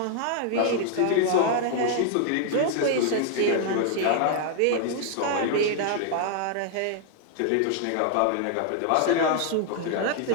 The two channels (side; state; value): both; different; correlation 0.00